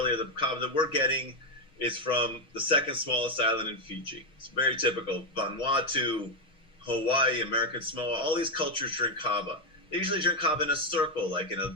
the kava that we're getting is from the second smallest island in Fiji. It's very typical. Vanuatu, Hawaii, American Samoa, all these cultures drink kava. They usually drink kava in a circle, like in a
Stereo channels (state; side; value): late; right; 6.2 ms